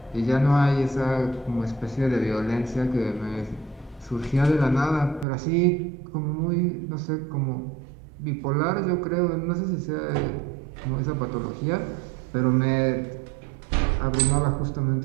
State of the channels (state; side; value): drops out; left; at 5.2 s